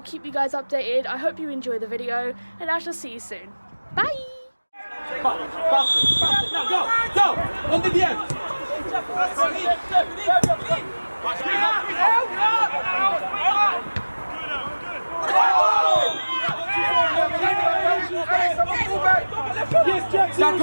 you guys updated. I hope you enjoy the video, and I shall see you soon. Bye! Now go! On the end! Jack, go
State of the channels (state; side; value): inverted; both; correlation -1.00